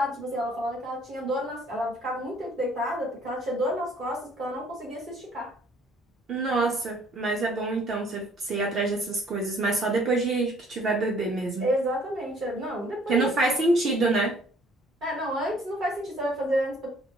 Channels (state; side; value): normal; both; correlation 0.59